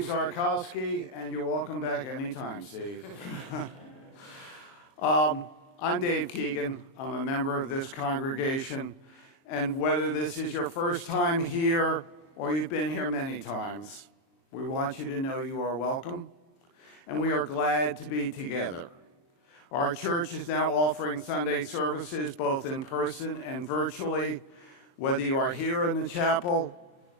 Zarkowski, and you're welcome back anytime, Steve. I'm Dave Keegan. I'm a member of this congregation, and whether this is your first time here or you've been here many times, we want you to know you are welcome, and we are glad to be together. Our church is now offering Sunday services both in person and virtually. Whether you are here in the chapel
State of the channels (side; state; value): right; late; 23 ms